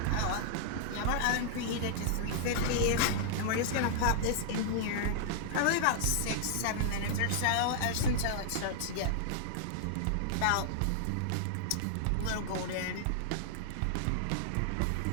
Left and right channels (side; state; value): both; different; correlation -0.01